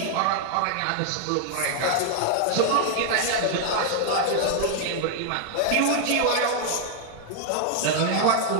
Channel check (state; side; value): different; both; correlation 0.00